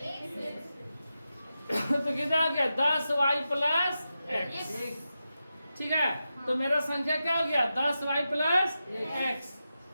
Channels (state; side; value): inverted; both; correlation -0.90